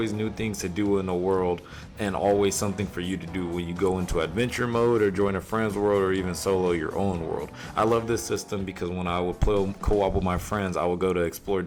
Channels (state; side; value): identical; both; correlation 1.00